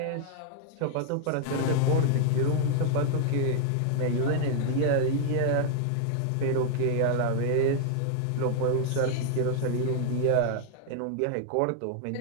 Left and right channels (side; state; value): both; different; correlation -0.01